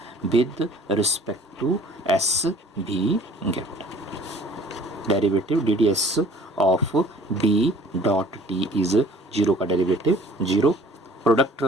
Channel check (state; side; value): normal; both; correlation 0.51